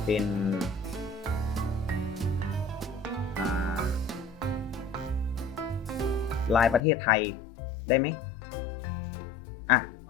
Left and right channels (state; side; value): drops out; right; at 6.8 s